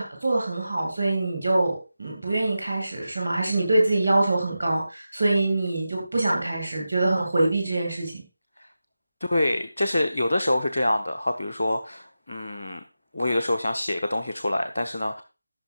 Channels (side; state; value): both; inverted; correlation -0.92